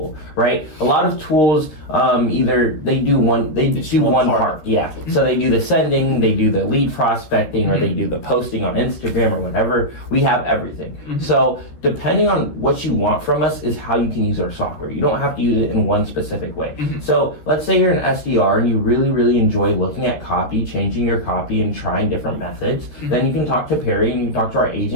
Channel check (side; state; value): right; late; 13 ms